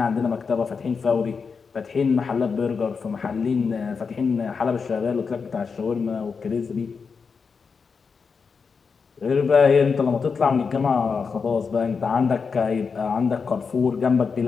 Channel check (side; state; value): right; quieter; 5.4 dB